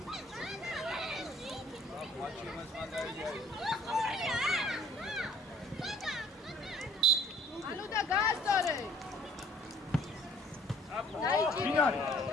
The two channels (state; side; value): normal; both; correlation 0.55